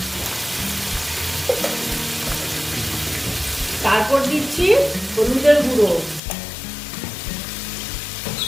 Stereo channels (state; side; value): drops out; right; at 6.2 s